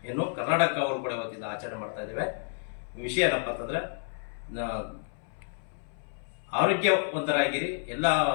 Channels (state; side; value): silent; right; 58 dB below the other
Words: ಕರ್ನಾಟಕ ಅವರು ಕೂಡ ಇವತ್ತಿಂದ ಆಚರಣೆ ಮಾಡ್ತಾ ಇದ್ದೇವೆ. ವಿಷಯ ಏನಪ್ಪ ಅಂತಂದ್ರೆ, ಆರೋಗ್ಯವಂತರಾಗಿರಿ,